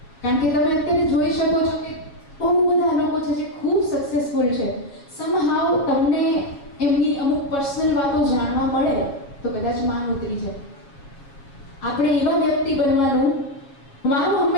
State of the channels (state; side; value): late; right; 7.3 ms